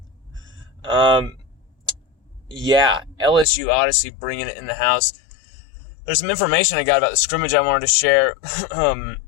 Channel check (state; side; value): drops out; right; at 3.5 s